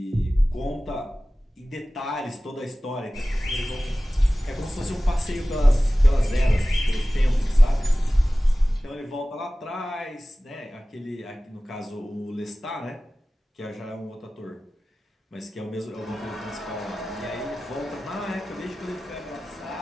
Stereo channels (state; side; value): normal; both; correlation 0.97